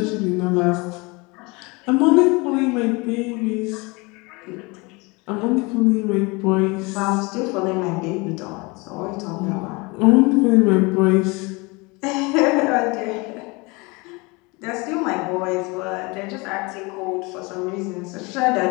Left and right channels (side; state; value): right; quieter; 26.4 dB